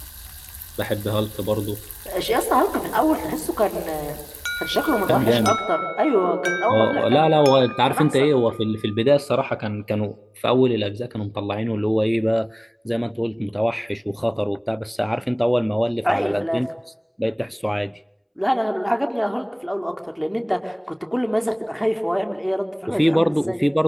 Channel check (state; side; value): identical; both; correlation 1.00